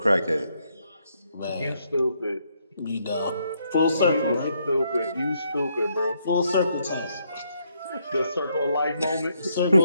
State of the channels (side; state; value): both; inverted; correlation -0.74